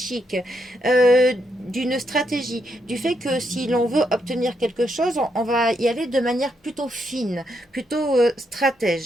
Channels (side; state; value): both; normal; correlation 0.79